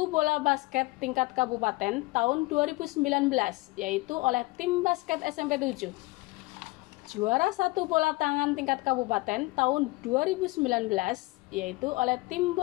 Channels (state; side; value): quieter; right; 22.3 dB